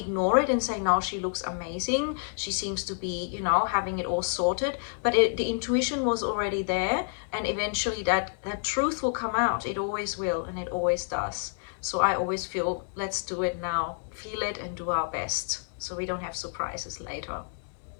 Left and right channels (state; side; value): silent; right; digital silence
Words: it and say, no, she looks amazing, she seems to be, having it all sorted, but the intuition was already there, and eventually that truth will come out. It always will, and it always does. So I always feel, let's do it now, feel it and do our best, so we don't have surprises later.